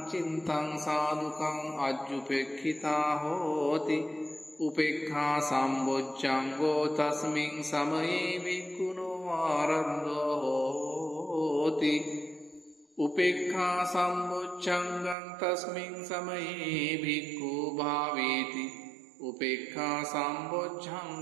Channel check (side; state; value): left; drops out; at 15.2 s